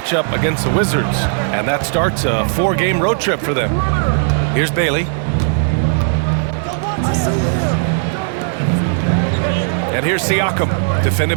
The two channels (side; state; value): left; silent; digital silence